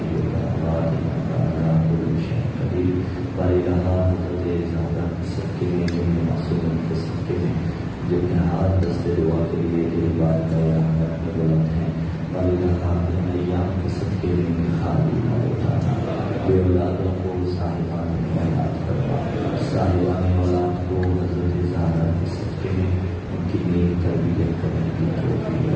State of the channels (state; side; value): identical; both; correlation 1.00